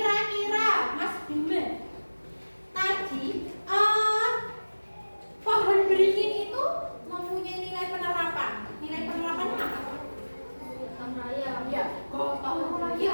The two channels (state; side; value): inverted; both; correlation -1.00